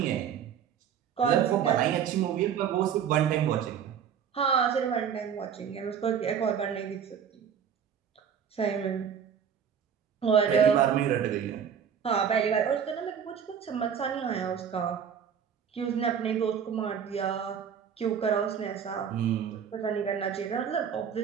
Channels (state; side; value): quieter; left; 7.9 dB